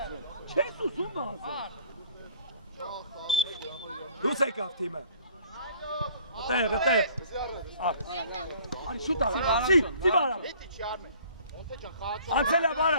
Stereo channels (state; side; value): inverted; both; correlation -0.54